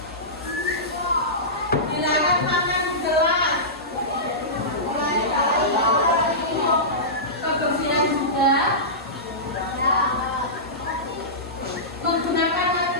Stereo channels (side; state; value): both; normal; correlation -0.18